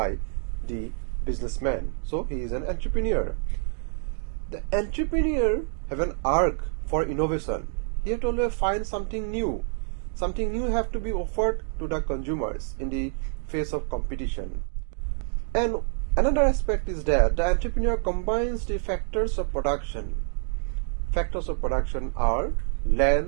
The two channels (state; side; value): silent; left; 60 dB below the other